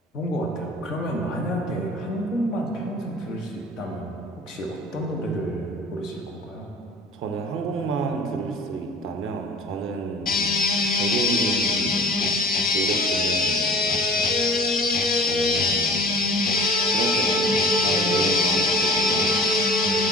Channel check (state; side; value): normal; both; correlation 0.42